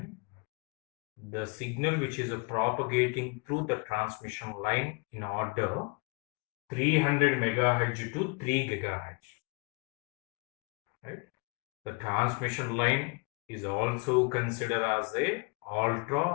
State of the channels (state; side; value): quieter; right; 32.0 dB